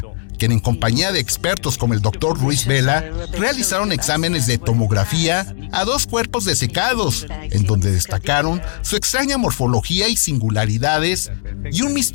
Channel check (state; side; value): silent; right; digital silence